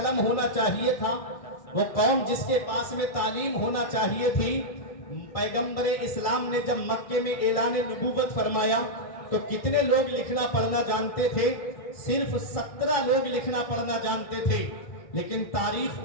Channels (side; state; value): right; late; 1.6 ms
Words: ہونا چاہیے تھا، وہ قوم جس کے پاس میں تعلیم ہونا چاہیے تھی، پیغمبر اسلام نے جب مکے میں اعلان نبوت فرمایا تو کتنے لوگ لکھنا پڑھنا جانتے تھے؟ صرف 17 لوگ لکھنا پڑھنا جانتے تھے۔ لیکن تاریخ